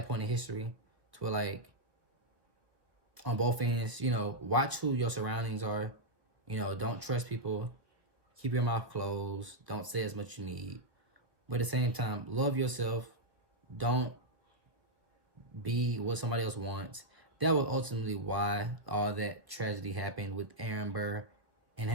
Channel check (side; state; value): left; late; 1.4 ms